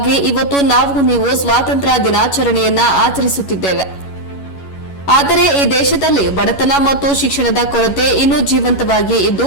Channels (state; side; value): late; right; 11 ms